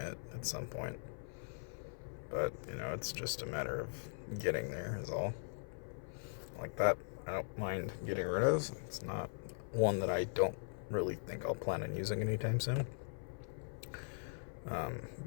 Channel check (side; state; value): right; silent; 51 dB below the other